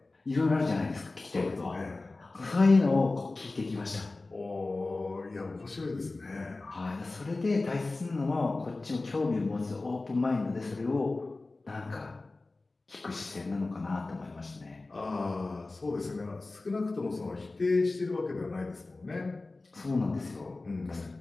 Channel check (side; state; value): right; quieter; 3.3 dB